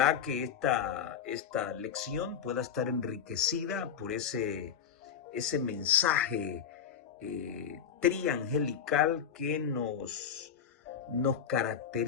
que esta lección pueda estar enriquecida por ese mensaje triangelical que nos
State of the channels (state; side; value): quieter; right; 8.0 dB